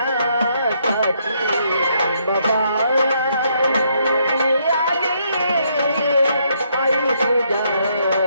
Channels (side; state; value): both; inverted; correlation -0.73